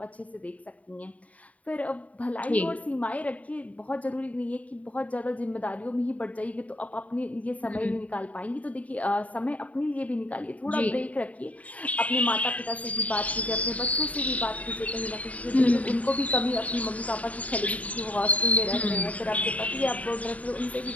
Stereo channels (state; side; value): late; right; 0.069 ms